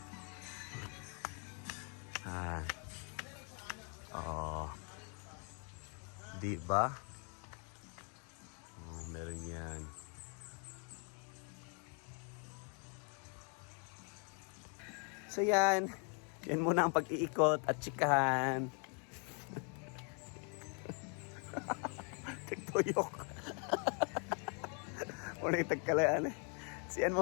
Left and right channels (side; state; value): right; quieter; 38.2 dB